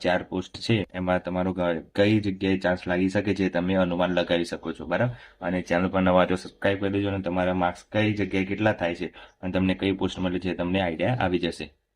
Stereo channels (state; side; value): identical; both; correlation 1.00